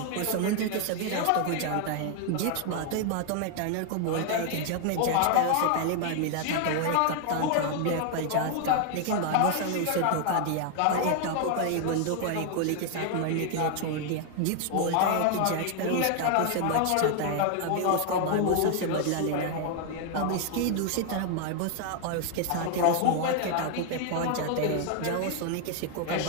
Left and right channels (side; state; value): both; different; correlation 0.00